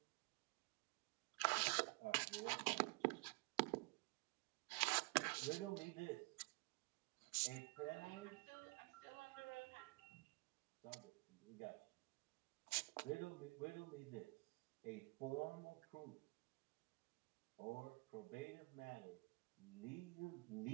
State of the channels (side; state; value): left; quieter; 27.4 dB